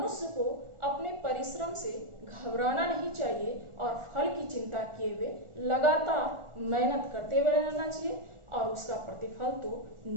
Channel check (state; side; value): late; left; 1.4 ms